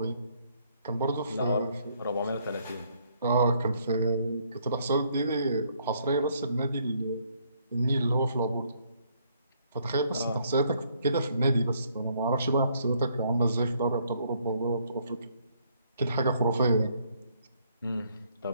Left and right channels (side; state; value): both; inverted; correlation -0.69